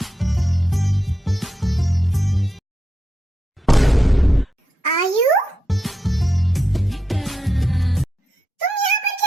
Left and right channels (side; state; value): both; normal; correlation 0.85